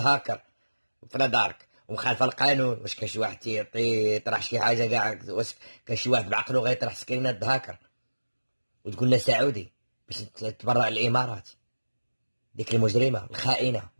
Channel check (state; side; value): inverted; both; correlation -1.00